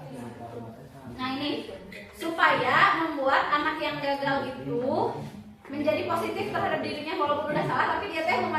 Nah ini supaya membuat anak yang gagal itu menjadi positif terhadap dirinya, walaupun udah salah tapi dia teh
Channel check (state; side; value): identical; both; correlation 1.00